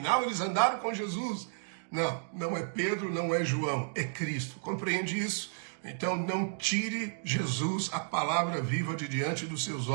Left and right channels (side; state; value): left; silent; digital silence